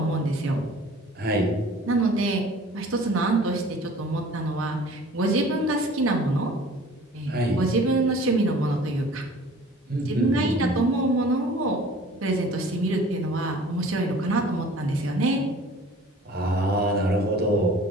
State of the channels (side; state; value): both; normal; correlation 0.47